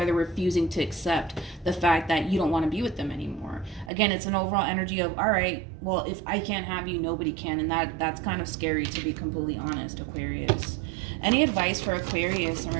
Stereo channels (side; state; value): left; drops out; at 3.9 s